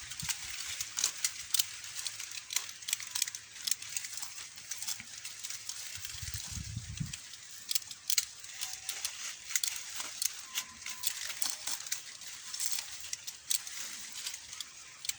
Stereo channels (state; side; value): identical; both; correlation 1.00